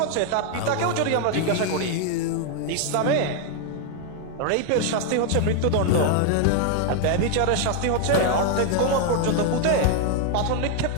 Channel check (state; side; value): different; both; correlation 0.00